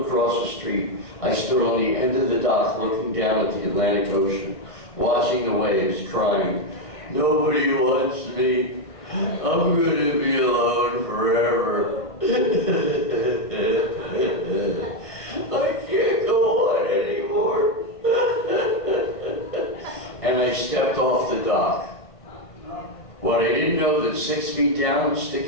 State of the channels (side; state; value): right; late; 1.5 ms